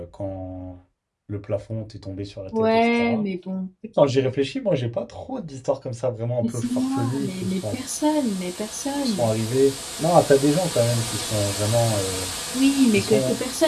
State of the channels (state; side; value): identical; both; correlation 1.00